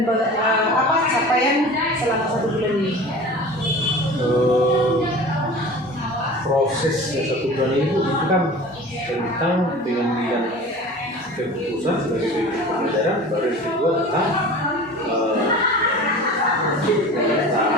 apa capaian selama 1 bulan ini? Proses yang 1 bulan itu kan tentang pengambilan keputusan sebagai pemimpin pembelajaran, baru yang kedua tentang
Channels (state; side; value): normal; both; correlation 0.38